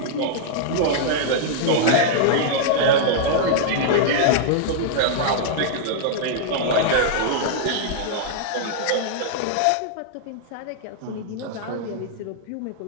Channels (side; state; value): both; different; correlation -0.01